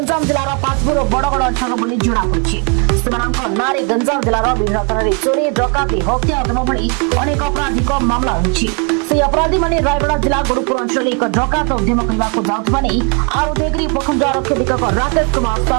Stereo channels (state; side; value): quieter; left; 36.8 dB